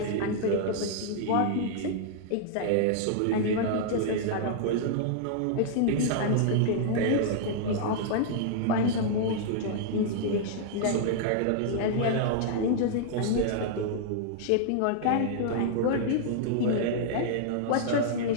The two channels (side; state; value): both; different; correlation -0.01